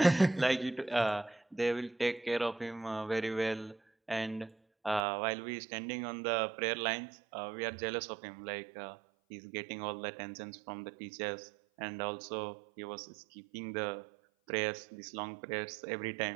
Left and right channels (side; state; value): left; drops out; at 5.0 s